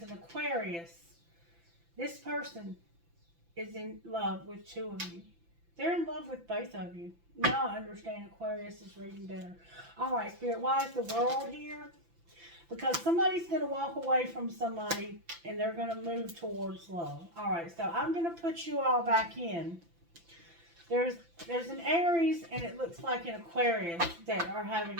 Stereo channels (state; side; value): late; left; 5.9 ms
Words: an Aquarius. This person is in love with 2 of you. They're in love with both of you. Now I understand Aquarius is reading better. All right, Spirit, why is the World here? Because somebody's going to walk away from somebody, and they're going to move towards love. All right, so I'm going to put you all back in. There's an Aries, and it looks like an Aquarius that are having...